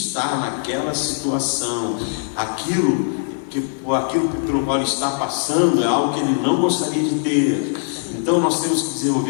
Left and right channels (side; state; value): right; silent; digital silence